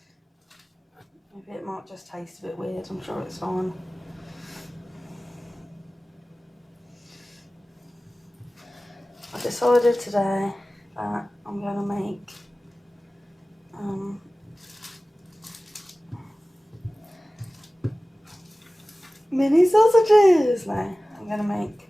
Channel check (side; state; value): both; normal; correlation 0.97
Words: Maybe it might just taste a bit weird, I'm sure it's fine. I decided today that I'm going to make mini sausages. No, I'm going to make